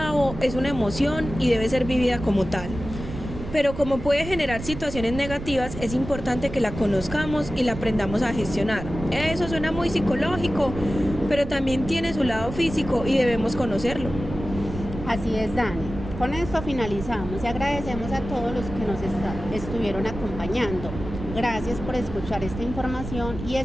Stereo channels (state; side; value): noise; right; rumble, 9 dB below the sound